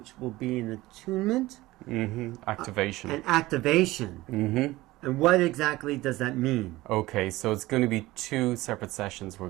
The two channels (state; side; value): quieter; left; 18.4 dB